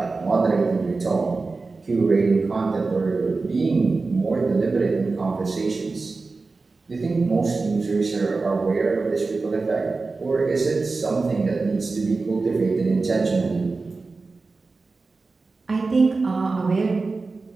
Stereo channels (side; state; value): left; quieter; 3.9 dB